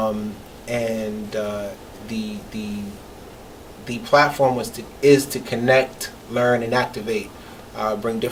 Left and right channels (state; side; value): identical; both; correlation 1.00